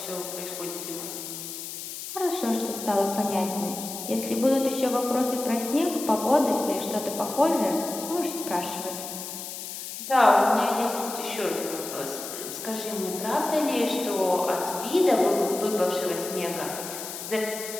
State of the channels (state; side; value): noise; left; hiss, 8 dB below the sound